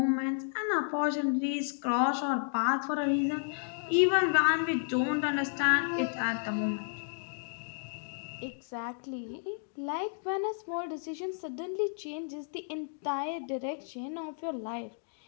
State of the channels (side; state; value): right; silent; digital silence